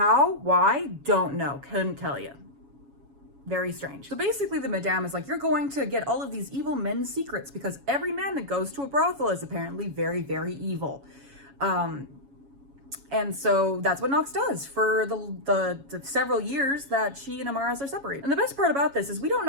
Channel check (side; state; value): left; late; 7.2 ms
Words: Why? Don't know. Couldn't tell you. Very strange. So basically the madame is like, you're going to get all of these evil men's secrets because every man that goes to a brothel is apparently very, very evil. And so that's what Knox does for the several years that she and Amaris are separated. And the best part about this is we don't